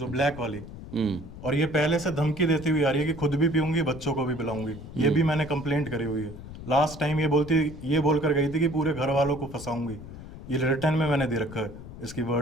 ब्लैक वाली। और ये पहले से धमकी देती हुई आ रही है कि खुद भी पीऊंगी, बच्चों को भी पिलाऊंगी। ये भी मैंने कंप्लेंट करी हुई है। लास्ट टाइम ये बोलकर गई थी कि पूरे घर वालों को फंसाऊंगी। ये रिटर्न में मैंने दे रखा है, इसकी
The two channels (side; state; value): left; noise; rumble, 13 dB below the sound